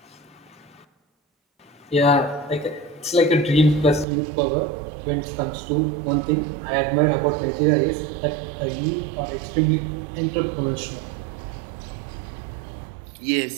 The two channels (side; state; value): left; drops out; at 4.0 s